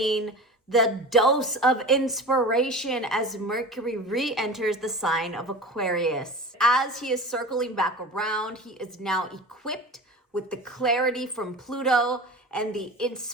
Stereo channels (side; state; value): both; normal; correlation 0.33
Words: the dose of inspiration as Mercury re-enters the sign of Aquarius. As he is circling back around, he is now equipped with the clarity from Pluto and the